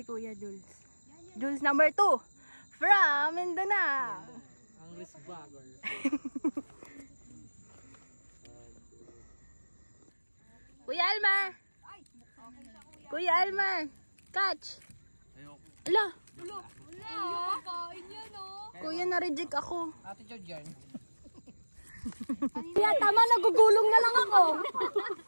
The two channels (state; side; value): inverted; both; correlation -1.00